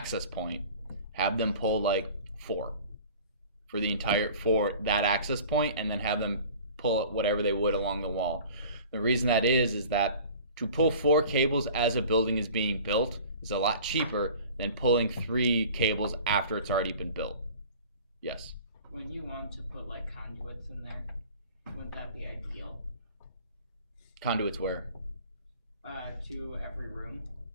point. Have them pull like 4 for that access point, and then have them pull whatever they would along the wall. The reason that is that to pull 4 cables as a building is being built is a lot cheaper than pulling 3 cables after it's already been built. Yes. When you want to put like conduits in there, wouldn't that be ideal? Conduits where? To every room,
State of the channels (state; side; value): inverted; both; correlation -0.43